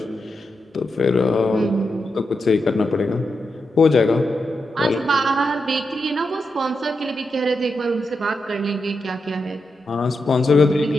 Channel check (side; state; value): both; normal; correlation 0.86